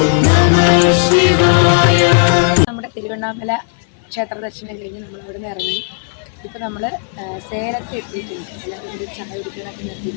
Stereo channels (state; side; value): silent; right; 57 dB below the other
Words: നമഃ ശിവായ. നമ്മുടെ തിരുവണ്ണാമല ക്ഷേത്ര ദർശനം കഴിഞ്ഞ് നമ്മൾ അവിടെ നിന്ന് ഇറങ്ങി. ഇപ്പോൾ നമ്മൾ സേലത്ത് എത്തിയിട്ടുണ്ട്. എല്ലാവരും കൂടി ചായ കുടിക്കാനൊക്കെ